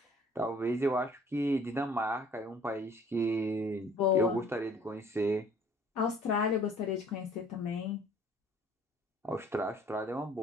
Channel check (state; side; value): normal; both; correlation 0.55